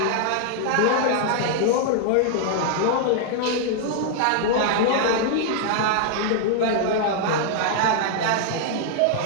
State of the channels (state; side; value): different; both; correlation -0.01